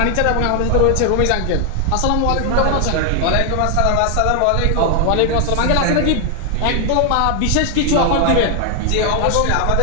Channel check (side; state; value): both; different; correlation 0.00